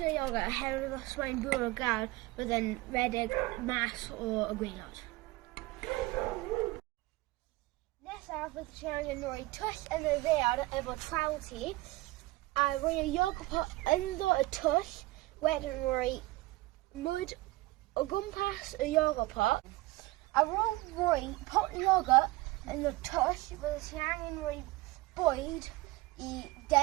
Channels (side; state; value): left; quieter; 20.3 dB